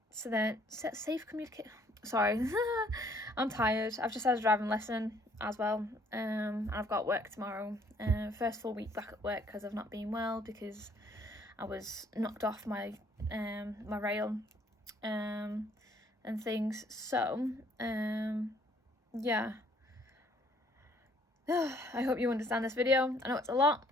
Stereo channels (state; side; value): normal; both; correlation 0.63